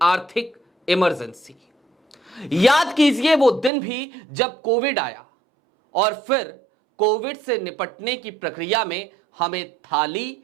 आर्थिक इमरजेंसी। याद कीजिए वो दिन भी जब कोविड आया और फिर कोविड से निपटने की प्रक्रिया में हमें थाली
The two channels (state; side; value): drops out; left; at 3.7 s